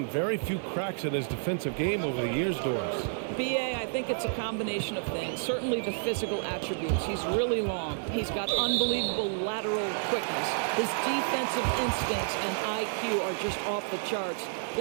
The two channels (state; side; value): silent; left; digital silence